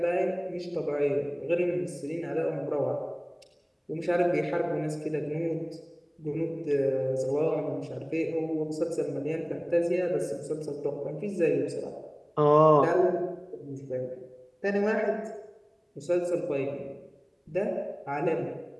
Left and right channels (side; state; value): both; identical; correlation 1.00